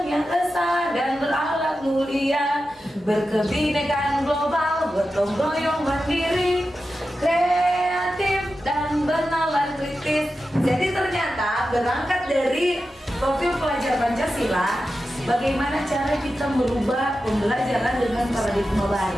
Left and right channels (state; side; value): normal; both; correlation 0.91